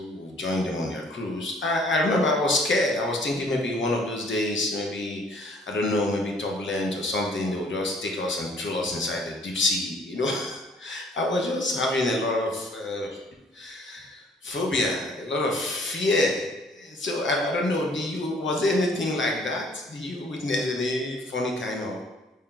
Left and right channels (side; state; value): both; normal; correlation 0.58